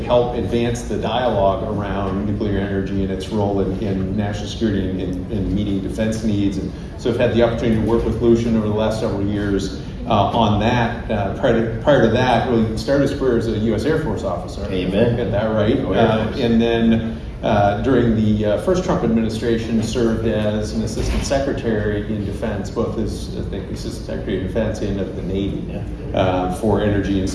help advance the dialogue around nuclear energy and its role in national security and in meeting defense needs. And so I've had the opportunity to work with Lucian over the last several years on that. Prior to that, really started his career as a U.S. Air Force officer. Amen. Got that right. And then during the first Trump administration, served as an assistant secretary in defense, both as assistant secretary of defense and of the Navy for energy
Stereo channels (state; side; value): identical; both; correlation 1.00